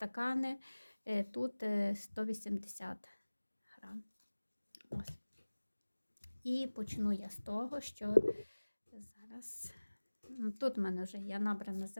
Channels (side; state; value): both; inverted; correlation -1.00